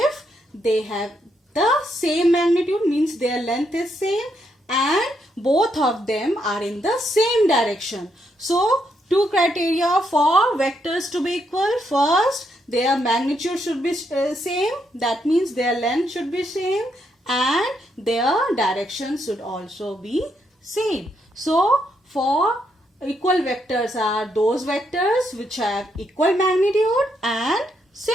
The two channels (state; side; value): normal; both; correlation 0.78